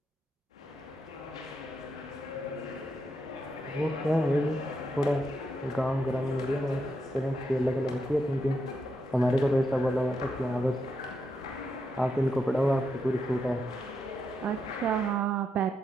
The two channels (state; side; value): normal; both; correlation 0.82